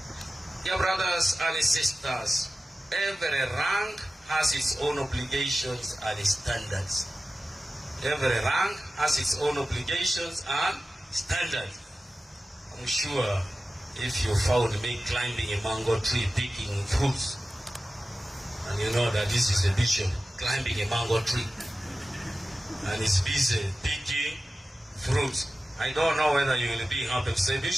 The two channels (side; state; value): both; normal; correlation 0.95